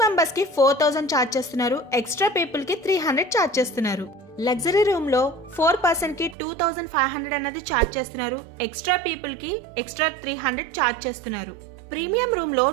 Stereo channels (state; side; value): drops out; left; at 6.4 s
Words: మెంబర్స్ కి 4000 ఛార్జ్ చేస్తున్నారు. ఎక్స్ట్రా పీపుల్ కి 300 ఛార్జ్ చేస్తున్నారు. లగ్జరీ రూమ్ లో 4 పర్సన్ కి 2500 అన్నది ఛార్జ్ చేస్తున్నారు. ఎక్స్ట్రా పీపుల్ కి ఎక్స్ట్రా 300 ఛార్జ్ చేస్తున్నారు. ప్రీమియం రూమ్ లో